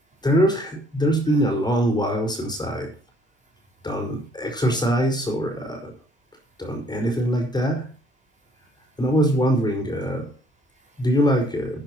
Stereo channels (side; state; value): both; normal; correlation 0.62